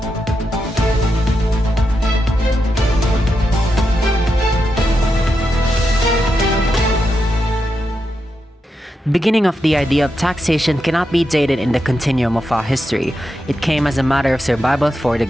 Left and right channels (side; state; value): both; normal; correlation 0.86